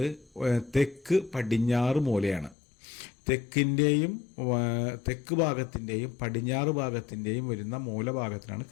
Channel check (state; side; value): drops out; right; at 2.6 s